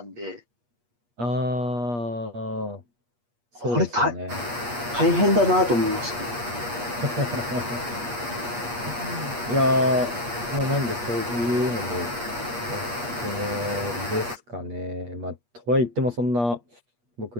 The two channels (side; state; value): left; late; 8.4 ms